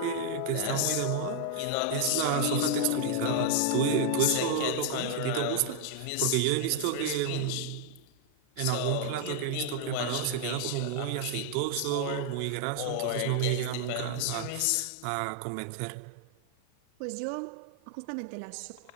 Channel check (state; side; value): different; both; correlation 0.00